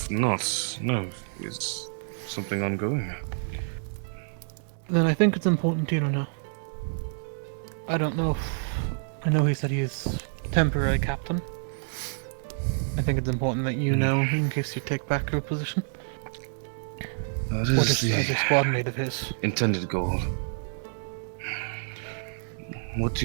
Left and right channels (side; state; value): left; silent; digital silence